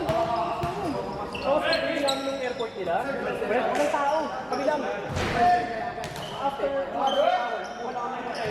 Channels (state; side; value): identical; both; correlation 1.00